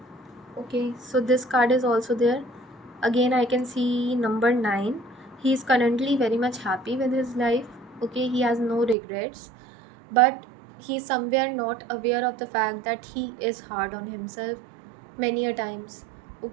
Okay, so this card is also there. Again, I can see number 9. He is currently very much happy with his life. Okay, he has no regrets, but he's somewhere not aware of the fact that he is hard on himself many a times.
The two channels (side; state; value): left; drops out; at 9.0 s